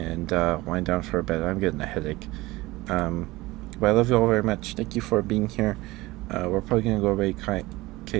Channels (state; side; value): quieter; left; 20.0 dB